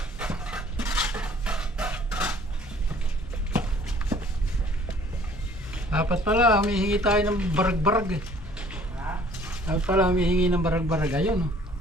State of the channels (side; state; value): both; normal; correlation 0.55